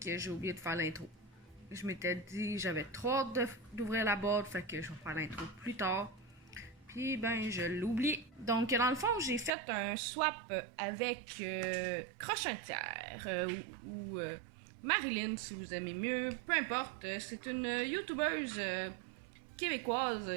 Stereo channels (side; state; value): left; drops out; at 9.5 s